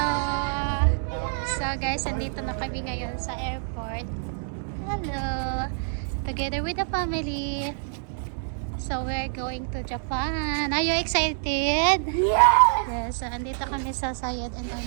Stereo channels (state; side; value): silent; left; digital silence